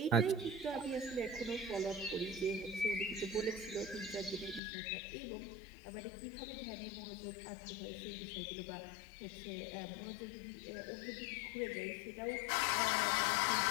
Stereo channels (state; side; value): drops out; right; at 4.6 s